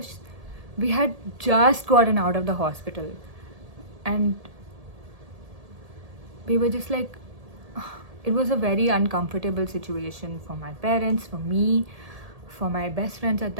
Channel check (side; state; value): left; late; 1.7 ms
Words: we had just gotten out of the hospital. And we were just like, it was a very uncomfortable situation for my parents, for me, for my best friends at